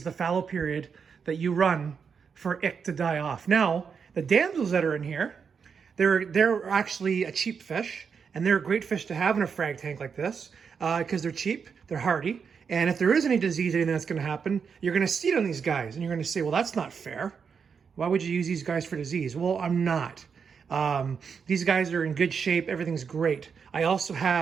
the fallow period that you run for ick to die off. Now, the damsels that are in here, they're actually a cheap fish, and they're a great fish to have in a frag tank like this because they're cheap, they're hardy, and if there is any disease, anything that's going to happen, you're going to see it on these guys, and you're going to say, well, that's not fair. Why would you use these guys for disease? Well, I'm not. These guys are in good shape. Everything's great. I also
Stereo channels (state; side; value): quieter; left; 6.3 dB